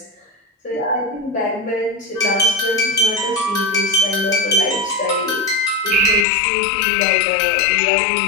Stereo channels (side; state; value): right; drops out; at 6.2 s